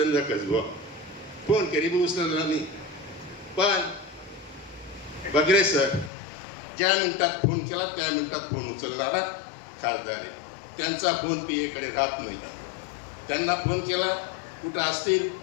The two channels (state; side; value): drops out; right; at 6.1 s